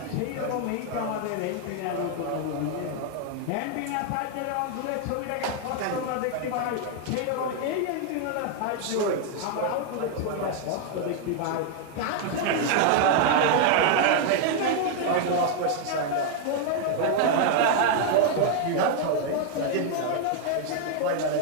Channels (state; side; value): different; both; correlation 0.00